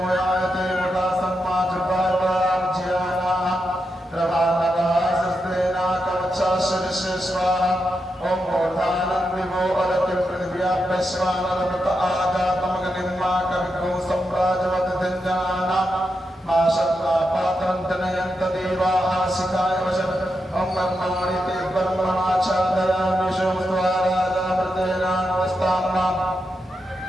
मोयायते मुदा सम्माजुर्वार्वाज्यानाः प्रभानदासस्तेना कवचाशरिष्यस्वाहा ओम मूर्धानन्दिवो अलतिं पृथिव्याभ्यस्वानरमृत आजातमगनिर्मा कविगो सम्राजवतधिञ्जनानां मा शब्दापात्रं जनयन्त देवाः शिखाय वशः ओम ब्रह्मणि ते ब्रह्मणाच्छादयामि सोमस्वाराजामृतेनानवस्ताम्नाम्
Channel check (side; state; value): both; normal; correlation 0.86